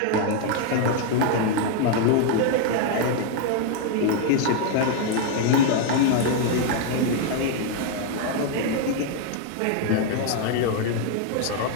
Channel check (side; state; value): both; different; correlation 0.00